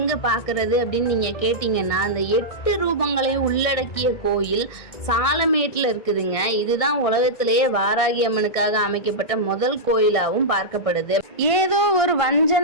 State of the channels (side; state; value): right; late; 1.6 ms